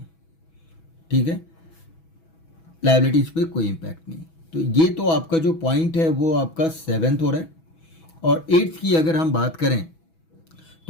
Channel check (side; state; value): right; late; 6.1 ms